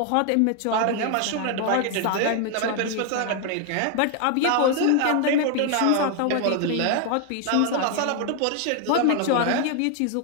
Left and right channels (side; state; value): both; different; correlation 0.00